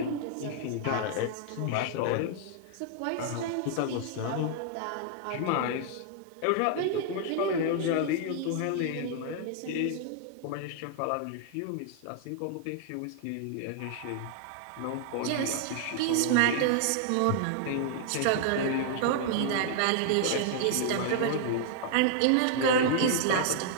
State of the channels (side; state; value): both; different; correlation -0.01